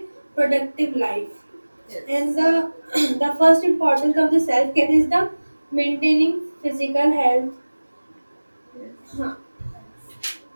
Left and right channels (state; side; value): inverted; both; correlation -1.00